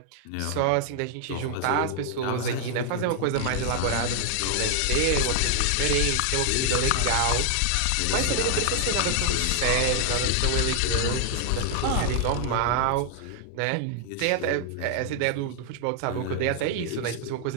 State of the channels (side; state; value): both; different; correlation 0.00